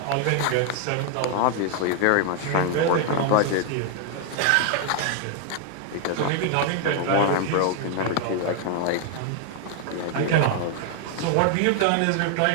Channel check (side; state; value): both; different; correlation 0.00